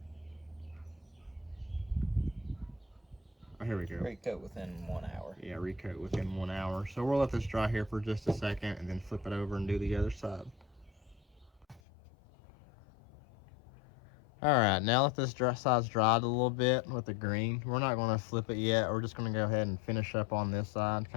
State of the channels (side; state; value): right; drops out; at 11.8 s